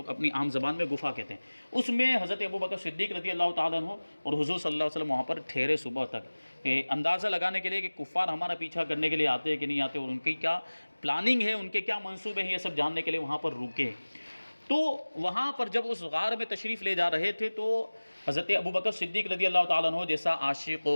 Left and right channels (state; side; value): inverted; both; correlation -1.00